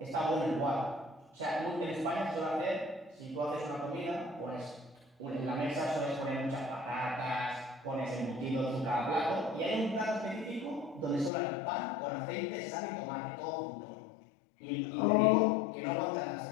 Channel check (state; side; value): drops out; right; at 11.3 s